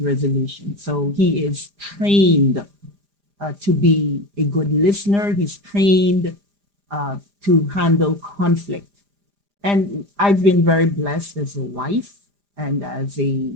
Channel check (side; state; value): left; late; 4.9 ms